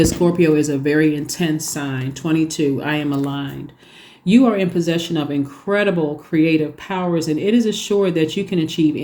Scorpio is a very intense sign. 22, I am aligned. You are in possession of incredible creative powers, and it is assured that you can achieve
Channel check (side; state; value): both; identical; correlation 1.00